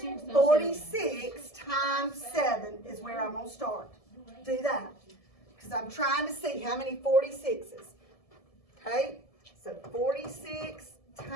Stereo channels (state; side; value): late; right; 1.7 ms